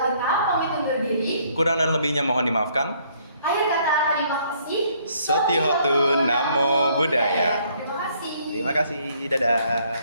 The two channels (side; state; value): both; inverted; correlation -0.65